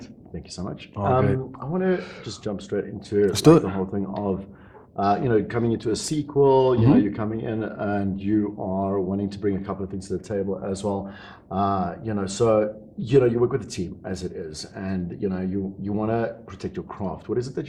Thank you so much. I want to just jump straight into like the whole thing of, coming into a sequel. You're coming in and you are wanting to bring a couple of things to the table as well. You work with a team as it is, and you want to protect your craft. What is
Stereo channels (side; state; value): both; identical; correlation 1.00